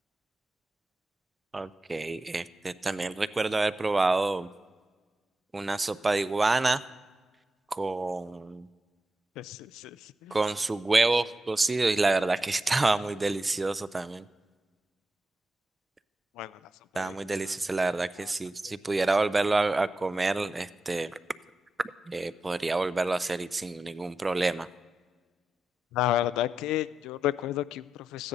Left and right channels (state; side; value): normal; both; correlation 0.89